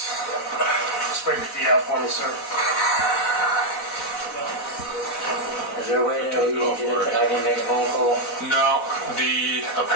Spread your feet out for me, sir. Is there a way that I can make a phone call? No,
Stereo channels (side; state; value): right; late; 4.0 ms